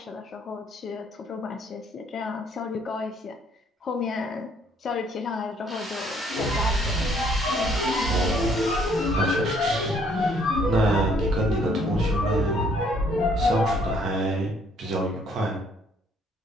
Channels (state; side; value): normal; both; correlation 0.64